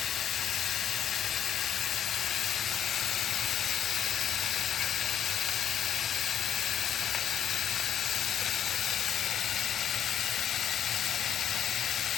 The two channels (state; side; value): quieter; right; 9.5 dB